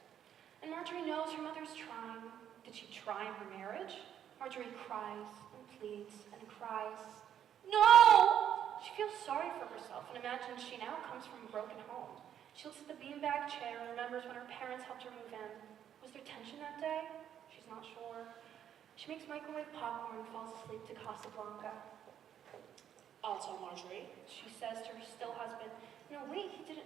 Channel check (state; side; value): quieter; left; 9.7 dB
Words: and Marjorie knows her mother's trying. Did she try in her marriage? Marjorie cries and pleads and cries. No! She feels sorry for herself and imagines she now comes from a broken home. She looks at the beanbag chair and remembers when her parents helped her move in. Was there tension that day? She's not sure. She makes microwave popcorn and falls asleep to Casablanca. I'll tell Marjorie. She says to her still husband, no, wait, he